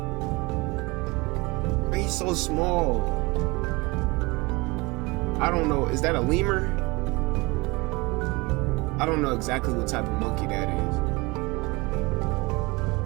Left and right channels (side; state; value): left; quieter; 24.6 dB